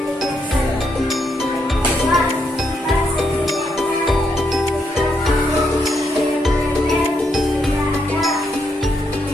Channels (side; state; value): both; normal; correlation 0.78